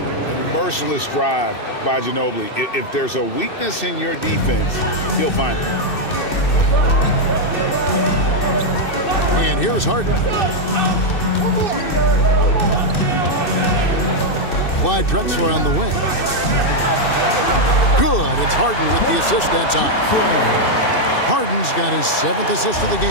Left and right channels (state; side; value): late; right; 2.6 ms